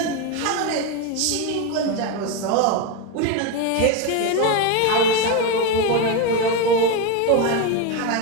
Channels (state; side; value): different; both; correlation 0.03